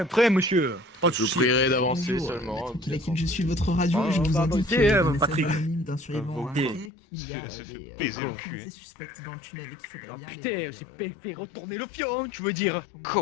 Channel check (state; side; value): drops out; right; at 6.9 s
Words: prêt, monsieur. Pas de Je vous soucis. prierai d'avancer Bonjour, seulement. Tranquille équipe, je suis votre radio Ah, et je vous bah, indique ok, que le Patrick. message anonyme d'un survivant Ah, a bon. indiqué qu'il y a Se fait des baiser le activités cul, hein. suspectes dans le tunnel et qu'il faudrait Ah, bien putain, les- c'est fait retourner le fion, tu veux dire?